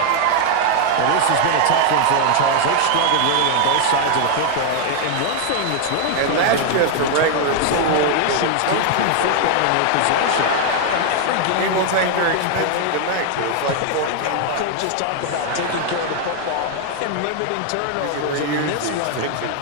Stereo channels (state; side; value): different; both; correlation 0.00